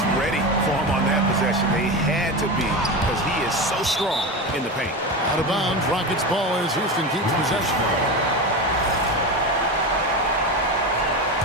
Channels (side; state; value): both; normal; correlation 0.22